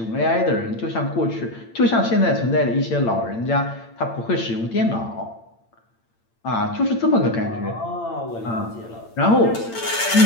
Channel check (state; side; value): late; right; 8.8 ms